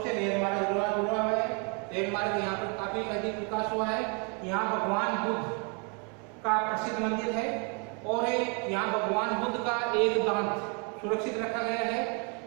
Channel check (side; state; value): left; quieter; 35.6 dB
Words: से रेल मार्ग जुड़ा हुआ है। रेल मार्ग यहाँ पर काफी अधिक विकास हुआ है। यहाँ भगवान बुद्ध का प्रसिद्ध मंदिर है और यहाँ भगवान बुद्ध का एक दांत सुरक्षित रखा गया है।